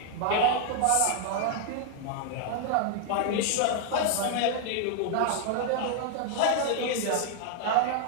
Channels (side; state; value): both; different; correlation 0.00